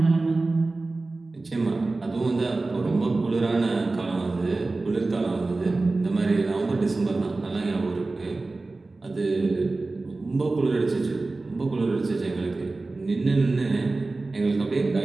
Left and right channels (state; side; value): quieter; left; 3.3 dB